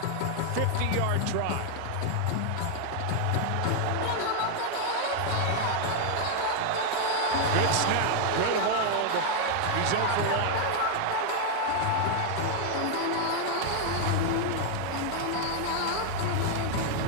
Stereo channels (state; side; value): different; both; correlation 0.00